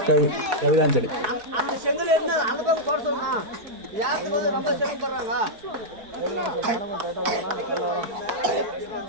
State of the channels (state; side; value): late; left; 4.7 ms